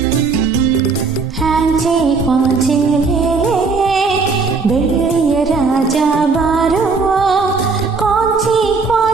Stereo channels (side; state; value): left; quieter; 4.6 dB